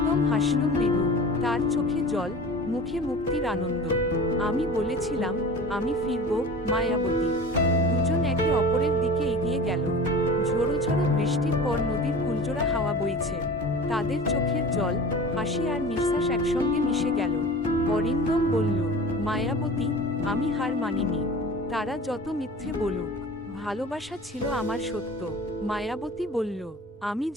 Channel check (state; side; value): normal; both; correlation 0.38